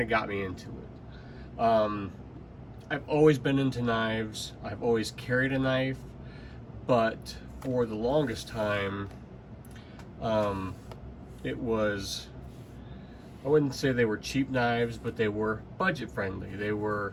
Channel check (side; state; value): both; identical; correlation 1.00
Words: of got me into it. I've always been into knives. I've always carried a knife, but for the longest time, it was, I wouldn't say they were cheap knives, but they were budget friendly. They were